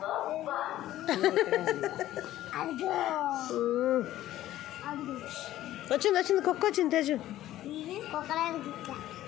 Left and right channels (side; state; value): right; quieter; 14.0 dB